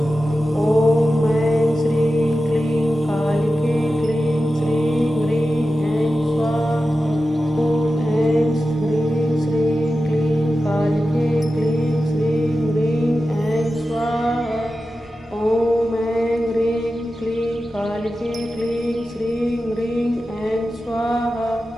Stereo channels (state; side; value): normal; both; correlation 0.93